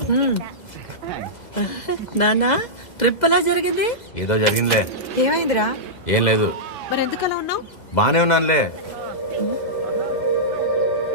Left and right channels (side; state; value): right; late; 2.0 ms